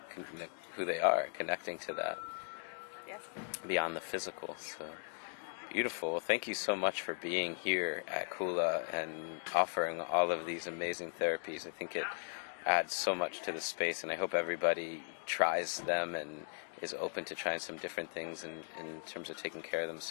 who they are, connecting to that. Yes. Beyond the physical. So beautiful. Well, thank you so much for being here at Kula and offering all of these amazing therapies. I think it adds so much to the space, and I hope everybody tries them and is open to trying some different things in terms of taking care of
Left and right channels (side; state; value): right; silent; digital silence